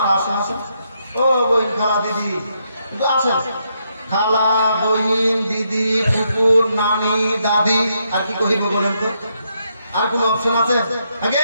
আসেন আসেন। ও বহিন, খালা, দিদি আসেন, খালা, বহিন, দিদি, কুকুর, নানি, দাদি, আর কি কহিব বলেন তো? আর কোন অপশন আছে? আগে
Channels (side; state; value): both; inverted; correlation -0.78